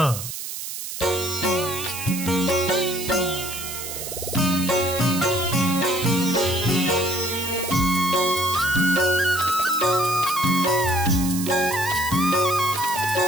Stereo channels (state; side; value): noise; right; hiss, 7 dB below the sound